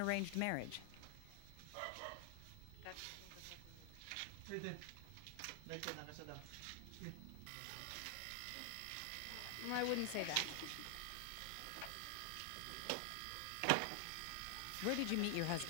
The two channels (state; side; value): different; both; correlation 0.00